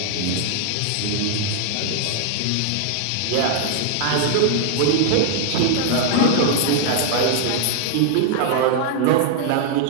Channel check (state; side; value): different; both; correlation 0.00